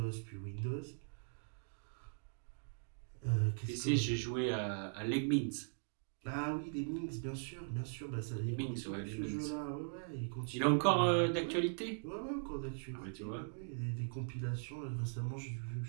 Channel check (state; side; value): silent; left; digital silence